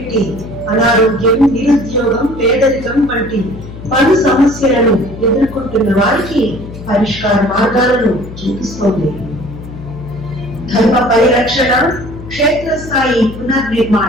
అనారోగ్యం, నిరుద్యోగం, పేదరికం వంటి పలు సమస్యలను ఎదుర్కొంటున్న వారికి పరిష్కార మార్గాలను చూపిస్తోంది. ధర్మ పరిరక్షణ, క్షేత్రస్థాయి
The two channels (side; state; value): left; noise; hum, 13 dB below the sound